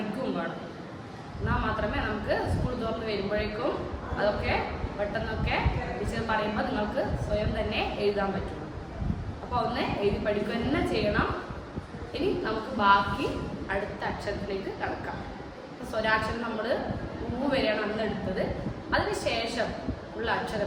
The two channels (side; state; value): both; identical; correlation 1.00